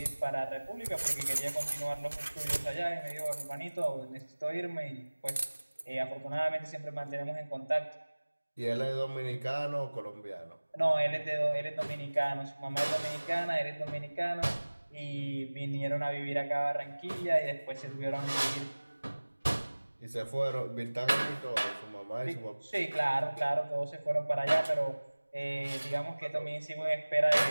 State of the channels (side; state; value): both; inverted; correlation -1.00